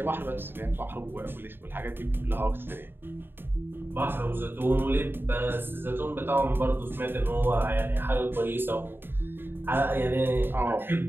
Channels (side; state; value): left; late; 0.10 ms